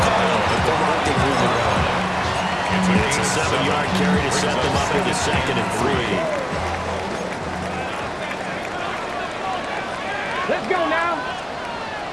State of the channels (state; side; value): identical; both; correlation 1.00